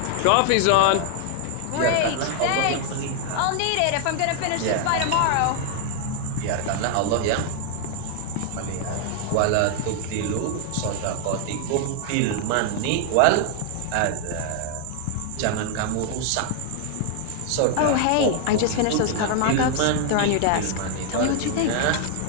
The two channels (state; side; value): different; both; correlation 0.00